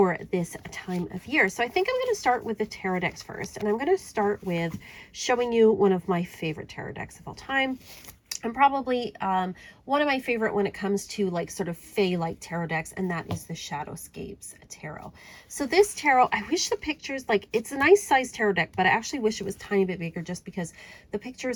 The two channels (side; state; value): both; identical; correlation 1.00